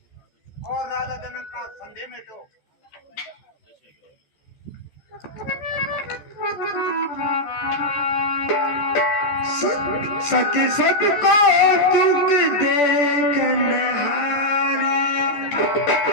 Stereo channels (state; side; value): late; right; 14 ms